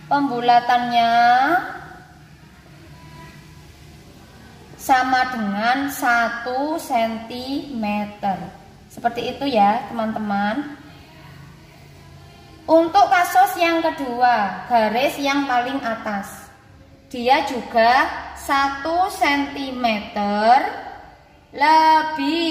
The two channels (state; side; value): identical; both; correlation 1.00